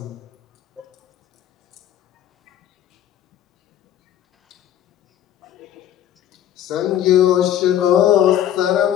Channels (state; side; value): quieter; right; 11.0 dB